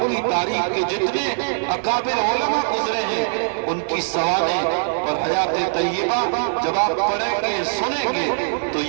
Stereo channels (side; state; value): left; silent; digital silence